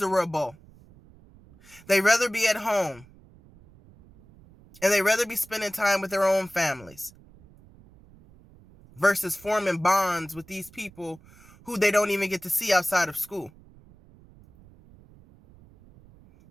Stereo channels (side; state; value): right; noise; rumble, 25 dB below the sound